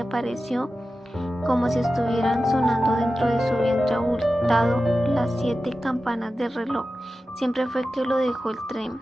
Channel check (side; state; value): both; normal; correlation 0.93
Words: apareció como si estuvieran sonando dentro de su vientre abultado las 7 campanas del reloj. Siempre fue que lo dejó el tren,